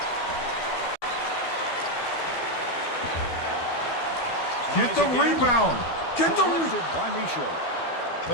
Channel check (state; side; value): late; right; 12 ms